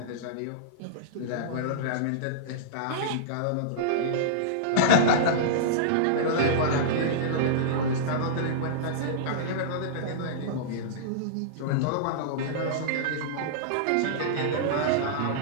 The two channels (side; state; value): both; different; correlation -0.03